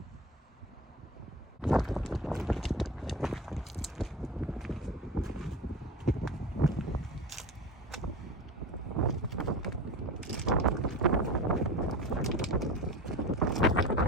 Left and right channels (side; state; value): both; normal; correlation 0.31